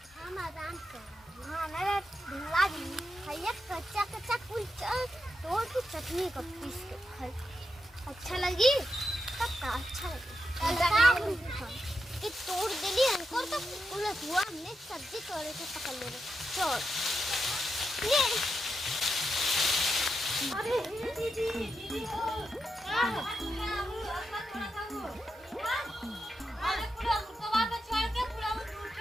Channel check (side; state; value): both; normal; correlation 0.86